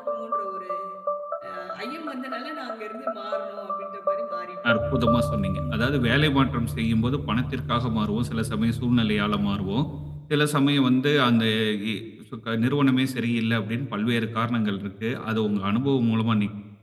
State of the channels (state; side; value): identical; both; correlation 1.00